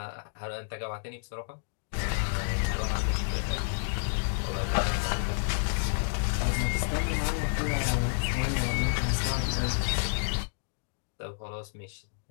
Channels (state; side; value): silent; right; digital silence